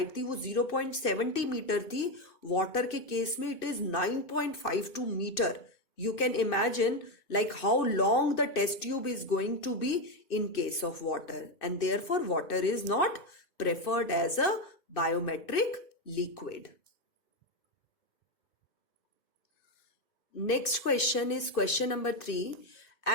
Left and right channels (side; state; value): right; late; 2.6 ms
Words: थी, वो 0.70 metre थी। Water के केस में it is 9.52 metre. You can imagine like how long the test tube is going to be in case of water, and therefore water is not preferred as a biometric liquid. Next question is question number 3.